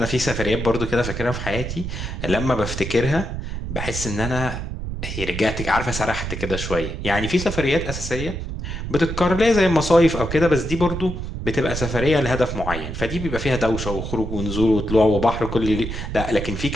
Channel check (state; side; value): noise; right; rumble, 5 dB below the sound